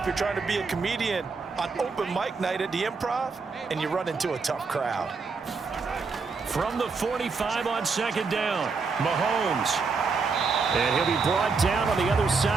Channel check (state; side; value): quieter; left; 4.7 dB